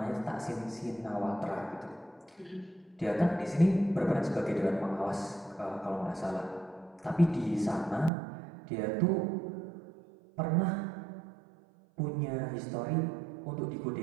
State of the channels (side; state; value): left; drops out; at 8.1 s